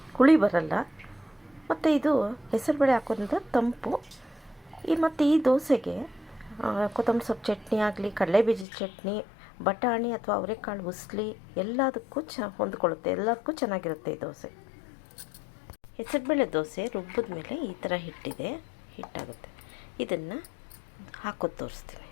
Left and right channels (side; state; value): right; drops out; at 8.7 s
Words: ಹುಳಿ ಬರಲ್ಲ. ಮತ್ತು ಇದು ಹೆಸರುಬೇಳೆ ಹಾಕೋದ್ರಿಂದ ತಂಪು. ಮತ್ತು ಈ ದೋಸೆಗೆ ಕೊತ್ತಂಬರಿ ಸೊಪ್ಪು ಚಟ್ನಿ ಆಗಲಿ, ಕಡಲೆಬೀಜದ ಚಟ್ನಿ, ಬಟಾಣಿ ಅಥವಾ ಅವರೆಕಾಳು ಉಸ್ಲಿ ಎಲ್ಲದಕ್ಕೂ ಹೊಂದ್ಕೊಳ್ಳುತ್ತೆ. ಎಲ್ಲದಕ್ಕೂ ಚೆನ್ನಾಗಿರುತ್ತೆ ಈ ದೋಸೆ. ಹೆಸರುಬೇಳೆ ದೋಸೆ ರುಬ್ಬಿದ ಮೇಲೆ ಈ ಥರ ಹಿಟ್ಟಾಗುತ್ತೆ. ಇದನ್ನು ಹಾಕೋದು ತೋರಿಸ್ತೀನಿ.